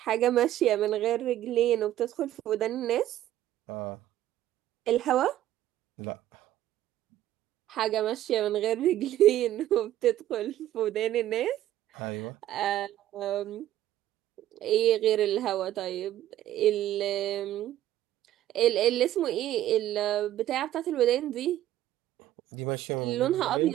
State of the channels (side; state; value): left; quieter; 13.1 dB